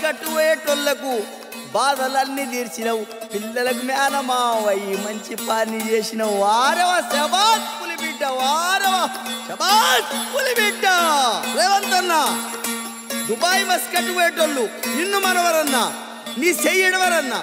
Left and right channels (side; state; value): both; identical; correlation 1.00